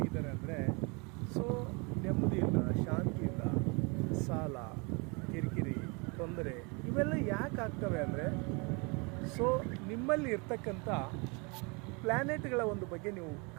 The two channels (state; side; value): quieter; left; 30.7 dB